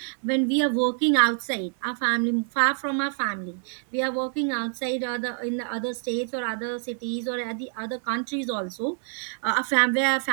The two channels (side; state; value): left; silent; 56 dB below the other